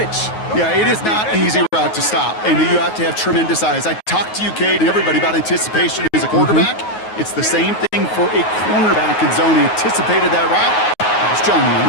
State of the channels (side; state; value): right; late; 9.4 ms